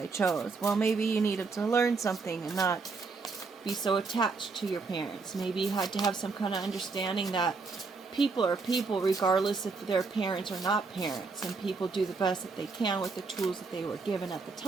chose? Well, maybe you needed to learn something and not be so attached to your parents. Maybe you had to have some kind of understanding that people are people regardless if they're parents or not parents, and people do the best that they can with the tools that they were given at the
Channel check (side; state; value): left; quieter; 4.3 dB